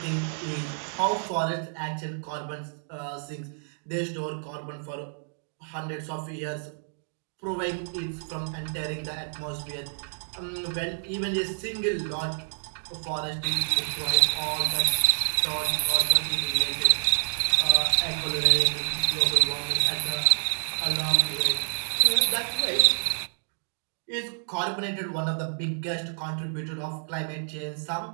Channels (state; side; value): silent; left; digital silence